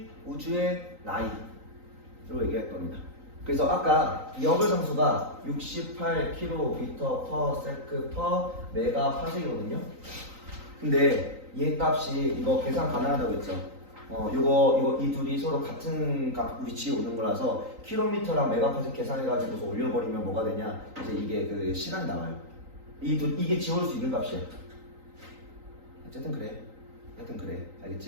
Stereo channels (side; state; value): left; late; 3.9 ms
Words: 우주의 나이로 얘기할 겁니다. 그래서 아까 이 허블 상수가 68km/s/메가파섹이거든요. 근데 얘 값이 이거 계산 가능하다고 했죠. 이거 이 둘이 서로 같은 위치에 오는 거라서 킬로미터랑 메가파섹 계산해가지고서 올려버리면 뭐가 되냐? 이제 이게 그 시간이 나와요. 이게 지울 수 있는 값이야. 어쨌든 그래.